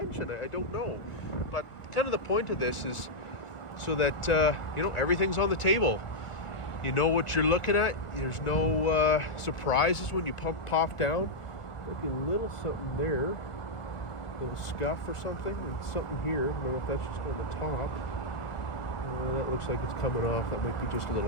I don't know. But kind of the point of this is so that, everything's on the table. You know what you're looking at. There's no surprises when you pop down. Maybe a little something there. A little scuff or something. And something here. I don't know if that's just on the top. That looks like it's coming off. That might be just a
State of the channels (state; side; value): late; right; 1.4 ms